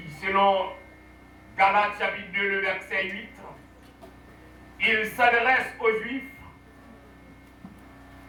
selon Galates chapitre 2, le verset 8. Il s'adresse aux Juifs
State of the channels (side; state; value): both; identical; correlation 1.00